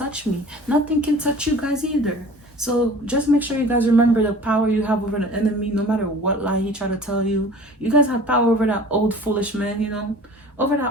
me. Nothing can touch you guys either. So just make sure you guys remember the power you have over the enemy. No matter what lie he try to tell you, you guys have power over that old foolish man, over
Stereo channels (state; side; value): normal; both; correlation 0.44